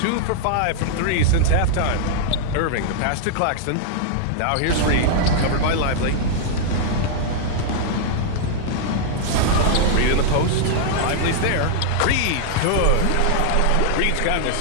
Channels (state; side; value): different; both; correlation -0.01